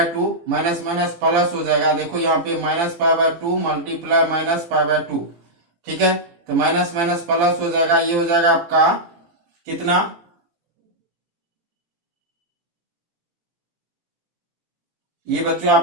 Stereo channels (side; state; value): left; late; 17 ms